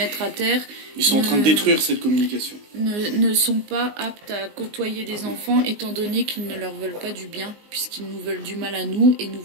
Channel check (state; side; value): late; left; 19 ms